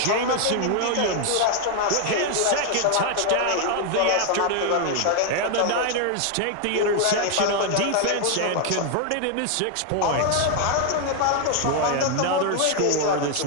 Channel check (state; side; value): different; both; correlation 0.00